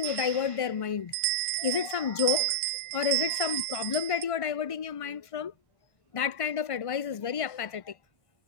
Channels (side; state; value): right; late; 1.5 ms